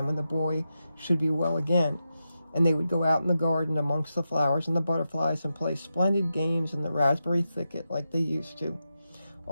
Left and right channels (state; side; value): inverted; both; correlation -0.89